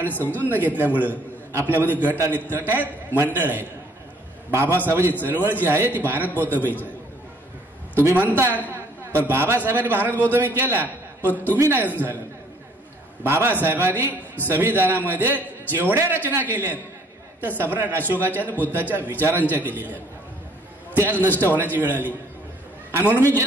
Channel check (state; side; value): normal; both; correlation 0.60